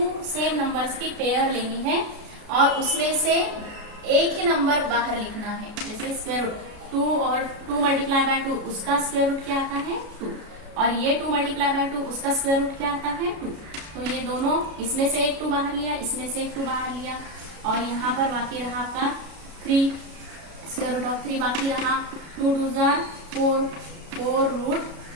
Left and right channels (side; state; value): left; late; 33 ms